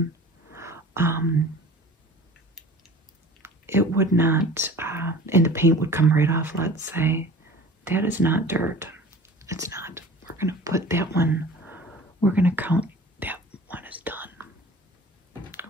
It would not, and the paint would come right off, let's say. That is not dirt. It's not. We're going to put that one, we're going to count that one is done.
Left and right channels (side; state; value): both; normal; correlation 0.42